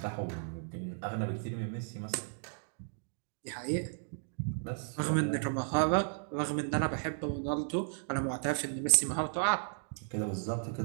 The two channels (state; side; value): silent; left; digital silence